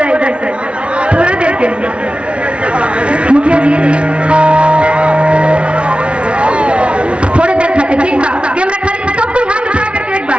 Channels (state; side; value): late; left; 0.059 ms